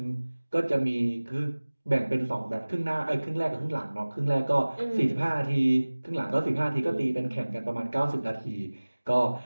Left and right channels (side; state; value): both; inverted; correlation -1.00